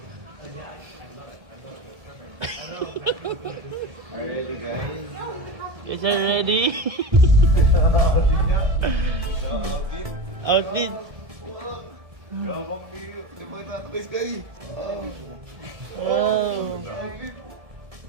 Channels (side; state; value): left; late; 1.7 ms